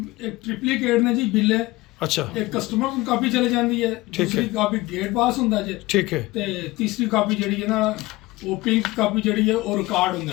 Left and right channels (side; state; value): right; quieter; 20.2 dB